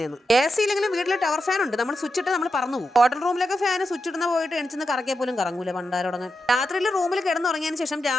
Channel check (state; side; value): normal; both; correlation 0.88